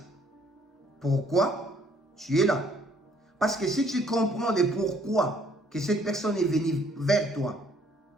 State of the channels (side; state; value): both; normal; correlation 0.64